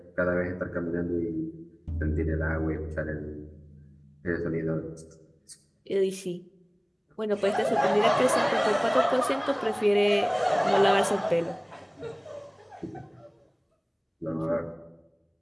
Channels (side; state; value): both; identical; correlation 1.00